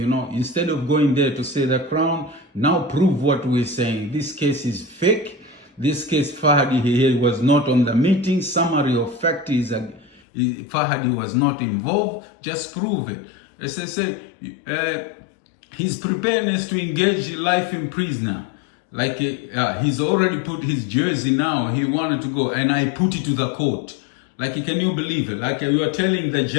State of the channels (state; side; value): drops out; right; at 10.2 s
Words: of going there to say the Crown, now prove what we're saying. This case is fake. This case, Farhad, he was not on the meeting. Summary of fact is Farhad was not involved. Just prove it. As I say, his preparedness to engage life in prisoner. Like he's already put his jersey now. He wanted to go, and I put it to the court. Like, can you believe it? Like you are telling the